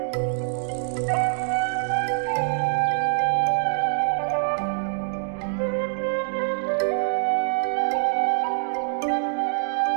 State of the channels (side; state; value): left; silent; digital silence